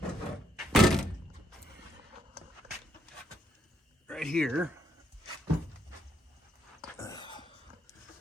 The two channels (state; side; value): normal; both; correlation 0.74